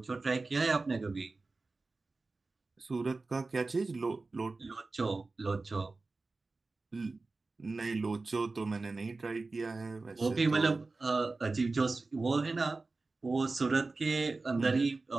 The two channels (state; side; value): quieter; left; 3.6 dB